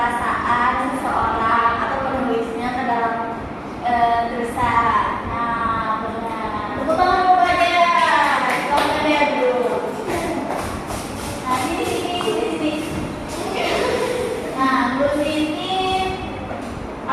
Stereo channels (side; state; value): both; identical; correlation 1.00